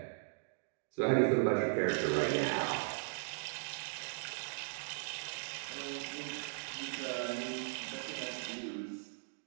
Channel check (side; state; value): left; silent; digital silence